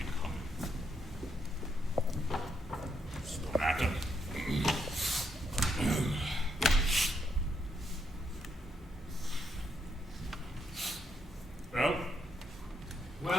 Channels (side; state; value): both; normal; correlation 0.77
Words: coming. It's no matter. Well?